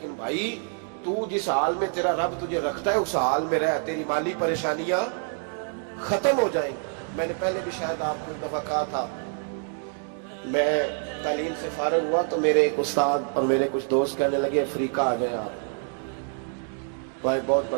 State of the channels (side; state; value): left; silent; 55 dB below the other